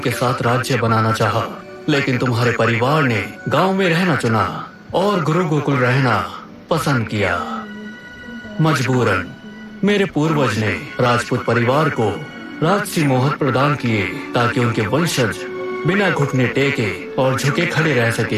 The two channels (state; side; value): identical; both; correlation 1.00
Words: साथ राज्य बनाना चाहा, लेकिन तुम्हारे परिवार ने गांव में रहना चुना और गुरु गोकुल रहना पसंद किया। मजबूरन मेरे पूर्वज ने राजपूत परिवार को राजसी मोहर प्रदान किए ताकि उनके वंशज बिना घुटने टेके और झुके खड़े रह